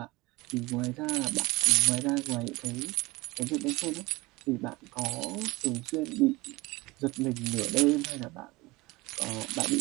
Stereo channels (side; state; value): left; quieter; 22.2 dB